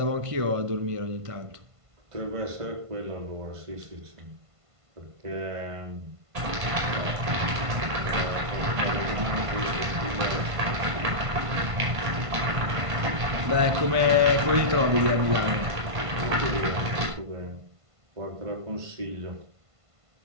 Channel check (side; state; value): left; late; 1.5 ms